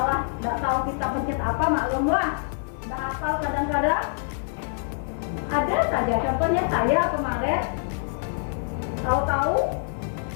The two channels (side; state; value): right; silent; digital silence